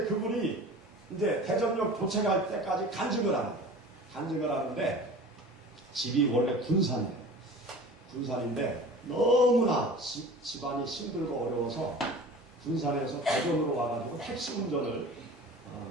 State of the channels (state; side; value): normal; both; correlation 0.40